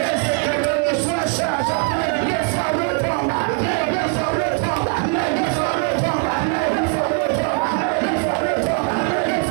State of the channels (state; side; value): quieter; left; 35.7 dB